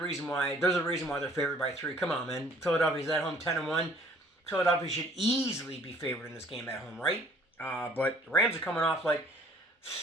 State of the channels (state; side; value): normal; both; correlation 0.55